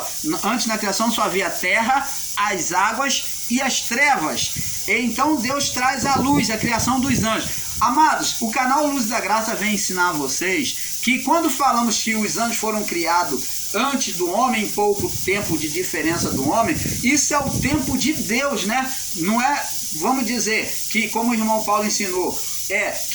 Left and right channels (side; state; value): left; noise; rumble, 23 dB below the sound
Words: antes da criação só havia terra, as águas e as trevas. Então Deus traz a luz, a criação dos anjos. Amados, o canal Luz da Graça vem ensinar a vocês que quando falamos que os anjos foram criados antes do homem, em pouco tempo de diferença do homem, isso é o tempo de Deus, né? Não é, vamos dizer, que como o irmão Paulo ensinou,